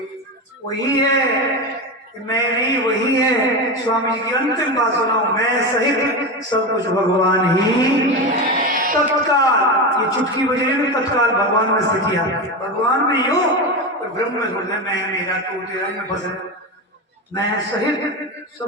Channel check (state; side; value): normal; both; correlation 0.19